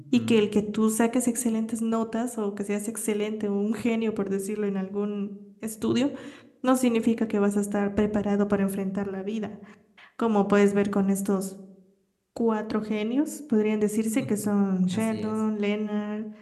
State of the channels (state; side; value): identical; both; correlation 1.00